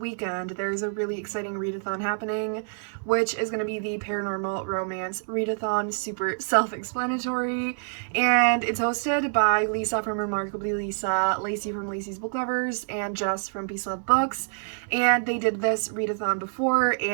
there's a really exciting readathon happening, which is going to be the Paranormal Romance Readathon, super self-explanatory, and it's hosted by Lisa from Remarkably Lisa, Lacey from Lacey's Book Lovers, and Jess from Peace Love Books. And they did this readathon before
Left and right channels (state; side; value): silent; left; 60 dB below the other